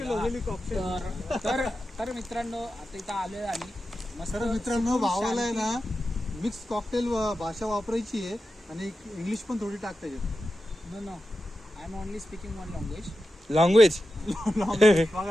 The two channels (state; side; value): normal; both; correlation 0.91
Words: वगैरे झालं. तर मित्रांनो आता इथं आलोय आम्ही मस्त. तर मित्रांनो भावाला आहे ना मिक्स कॉकटेल भाषा वापरायची आहे आणि इंग्लिश पण थोडी टाकता येते. No I am only speaking one language. Language